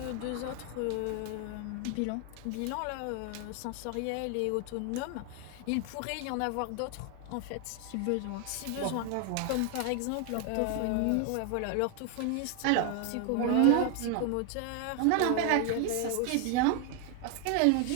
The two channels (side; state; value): both; different; correlation 0.00